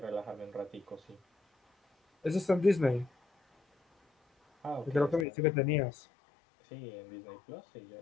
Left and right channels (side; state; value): right; drops out; at 5.2 s